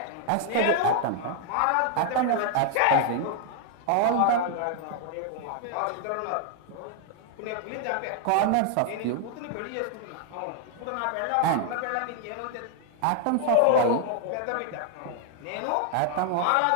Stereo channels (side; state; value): both; different; correlation 0.00